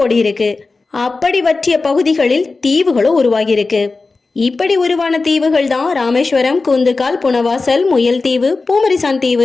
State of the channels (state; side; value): quieter; right; 3.9 dB